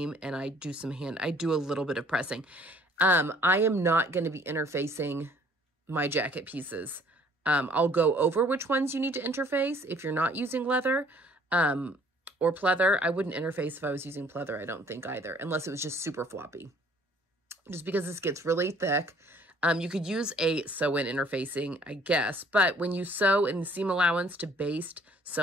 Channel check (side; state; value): both; normal; correlation 0.57